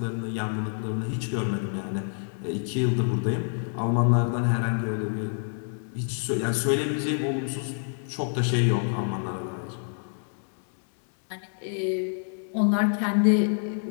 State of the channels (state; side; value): silent; right; digital silence